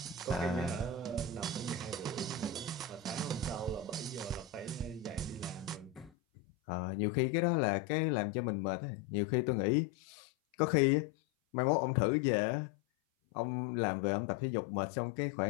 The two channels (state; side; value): drops out; right; at 6.1 s